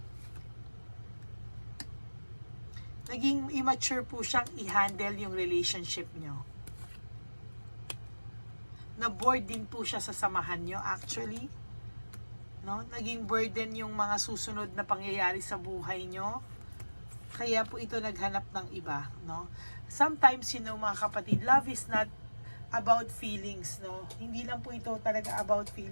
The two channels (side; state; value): both; inverted; correlation -1.00